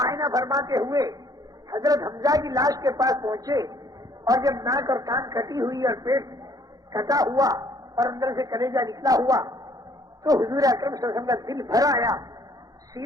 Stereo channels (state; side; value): late; left; 0.18 ms